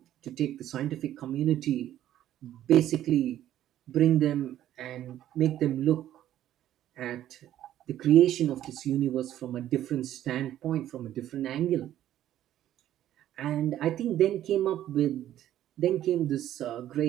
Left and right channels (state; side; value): quieter; left; 12.2 dB